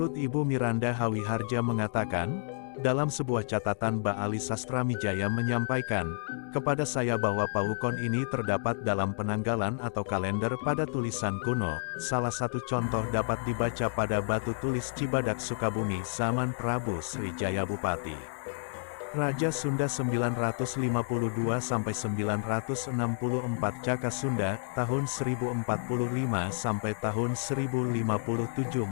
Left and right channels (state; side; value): silent; right; 58 dB below the other